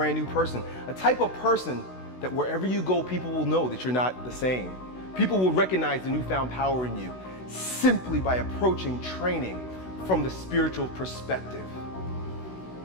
new person. A type of person that wherever you go, people will know that you're not the same. People will recognize the newfound power in you simply by approaching training from the spiritual perspective.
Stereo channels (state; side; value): late; right; 16 ms